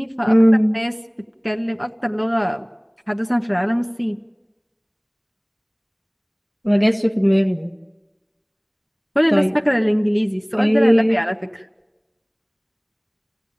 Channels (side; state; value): both; identical; correlation 1.00